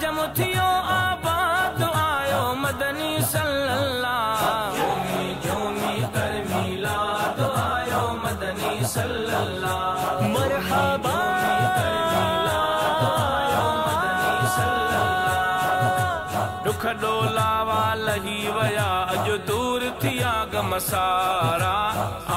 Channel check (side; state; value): both; identical; correlation 1.00